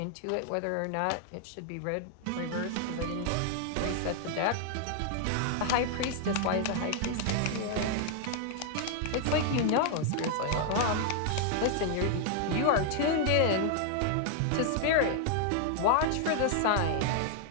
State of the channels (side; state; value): both; different; correlation 0.00